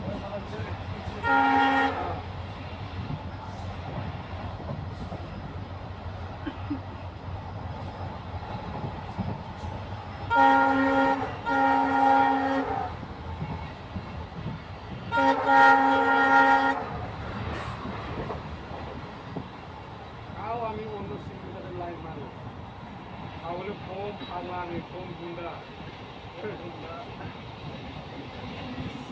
তাও আমি অন্য সিঙ্গুলের লাইন মারি তাহলে ফোন ফালানি ফোন গুন্ডা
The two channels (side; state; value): both; identical; correlation 1.00